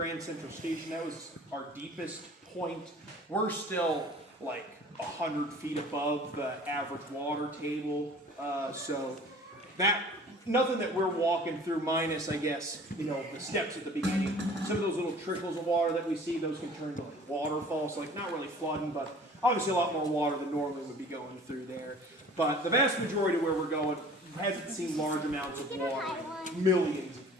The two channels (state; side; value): normal; both; correlation 0.47